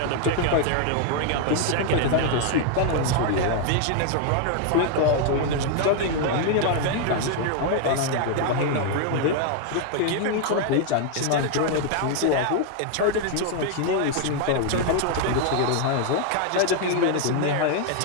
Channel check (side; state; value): both; different; correlation 0.00